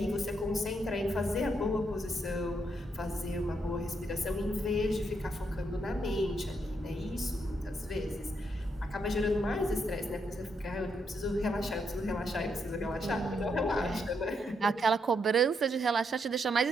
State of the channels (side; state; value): both; normal; correlation 0.78